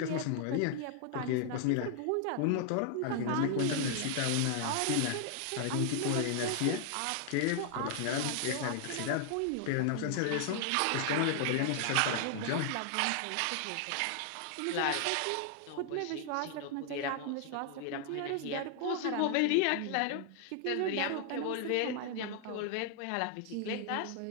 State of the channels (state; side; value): different; both; correlation 0.00